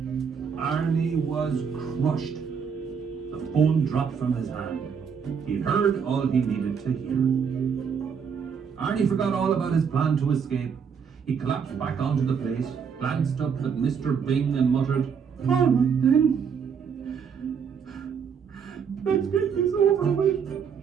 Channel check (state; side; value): quieter; left; 6.7 dB